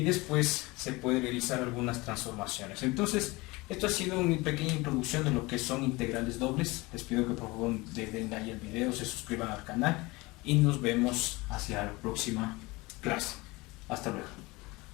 después se puede realizar algunas transformaciones. Entonces esto ha sido una pequeña introducción de lo que son integrales dobles. Les pido que por favor le den like al video, se suscriban al canal y nos vemos hacia la próxima clase. Hasta luego.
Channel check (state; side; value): quieter; right; 23.0 dB